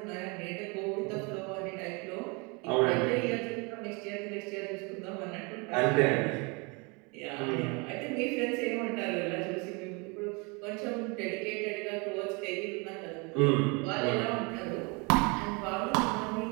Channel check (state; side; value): quieter; left; 30.1 dB